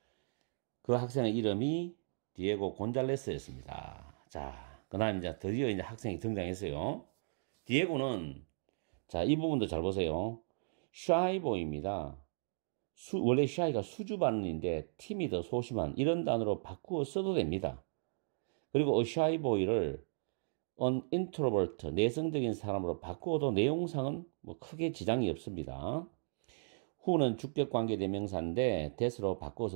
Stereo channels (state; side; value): silent; left; digital silence